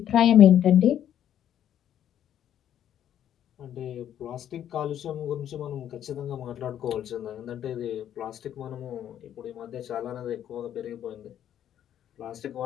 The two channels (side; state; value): right; quieter; 10.5 dB